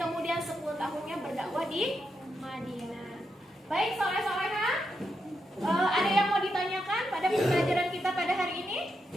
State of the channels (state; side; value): normal; both; correlation 0.84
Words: 10 tahunnya berdakwah di Madinah. Baik, soleh-solehah, ada yang mau ditanyakan pada pembelajaran kita pada hari ini?